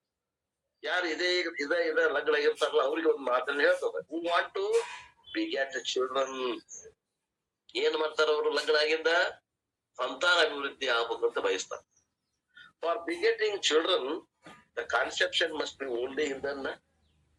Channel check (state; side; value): identical; both; correlation 1.00